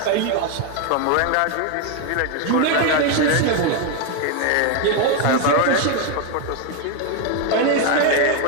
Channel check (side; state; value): both; different; correlation 0.01